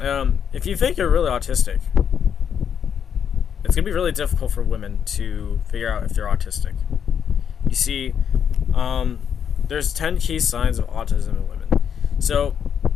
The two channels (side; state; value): right; quieter; 7.9 dB